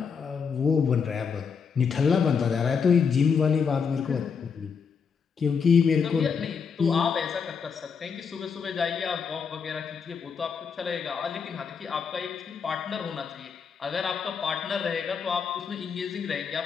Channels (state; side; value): quieter; right; 6.1 dB